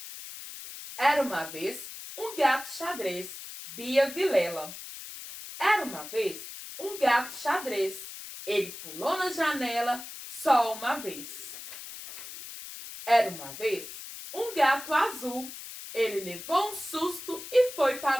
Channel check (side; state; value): left; noise; hiss, 11 dB below the sound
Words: Era uma vez um gato xadrez, Bia Vilela. Era uma vez um gato xadrez. Ele pulou na janela só uma vez. Era uma vez um gato azul. Ele levou um susto e foi